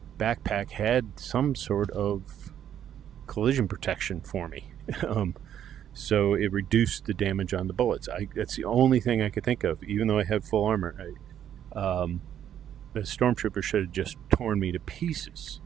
backpack had some sort of collision protection for me. So it reduced the damage on the bullets. That's the only thing I could think of, even though I had full armor. The stormtrooper should have just torn me to pieces.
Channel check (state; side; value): quieter; left; 10.0 dB